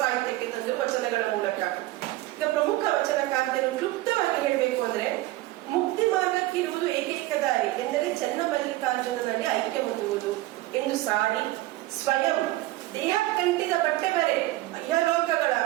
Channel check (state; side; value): quieter; left; 17.5 dB